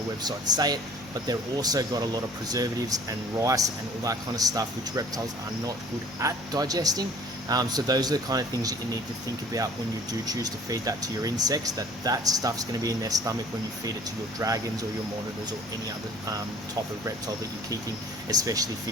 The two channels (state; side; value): normal; both; correlation 0.50